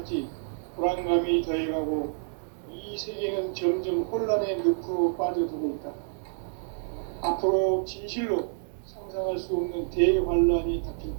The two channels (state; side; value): silent; left; digital silence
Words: 불안감이 더해가고 이 세계는 점점 혼란에 늪으로 빠져들고 있다. 앞으로 진실로 상상할 수 없는 대환란이 닥칠